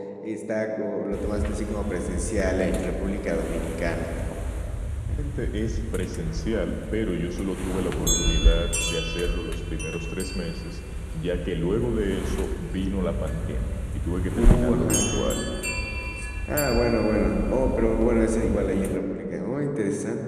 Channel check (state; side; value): identical; both; correlation 1.00